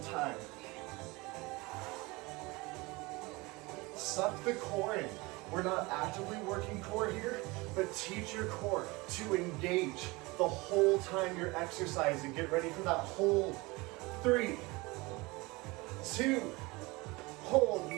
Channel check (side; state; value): left; quieter; 23.8 dB